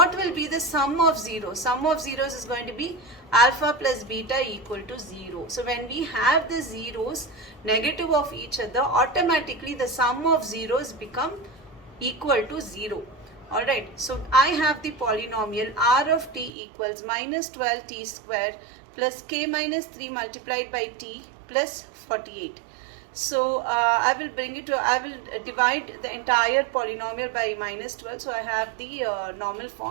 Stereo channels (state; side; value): drops out; left; at 16.5 s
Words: will be the sum of zeros? Sum of zeros is going to be alpha plus beta equal to 0. So when we have the zeros negative of each other, automatically the sum of zeros become equal to 0. Alright, so I have the polynomial r of t equals minus 12t square plus k minus 3 multiplied by t plus 48. So I will divide the entire polynomial by minus 12. So I have the normal